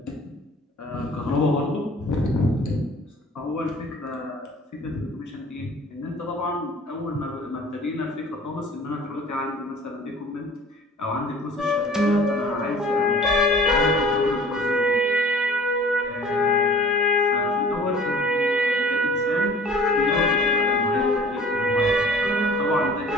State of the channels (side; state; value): both; normal; correlation 0.47